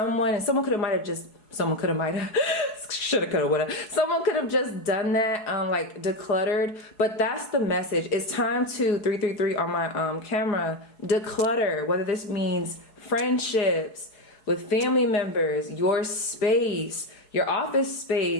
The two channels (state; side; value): late; right; 4.7 ms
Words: and someone could have shoulda, coulda, woulda. Someone could have just done that, like decluttered. But that's the message. It's time to 333 on my camera, declutter. Whether this means friendships with family members, your space, your office